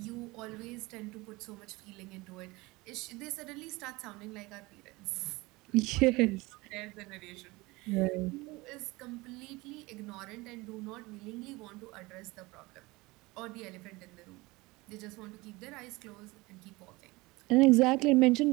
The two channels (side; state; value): left; quieter; 22.4 dB